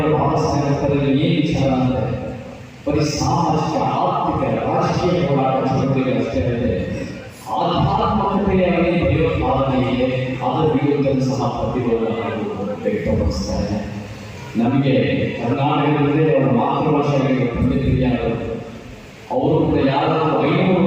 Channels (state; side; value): identical; both; correlation 1.00